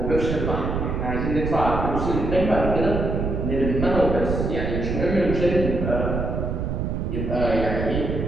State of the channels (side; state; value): right; noise; rumble, 2 dB below the sound